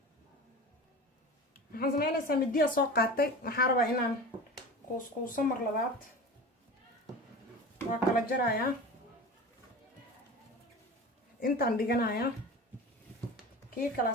waxaan sameynaysaa midiya soo qaatay waxaan rabaa inaan kuuskuuso mar labaad waa kala jarayaa intaan dhiganayaa kii kala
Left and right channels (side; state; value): both; normal; correlation 0.33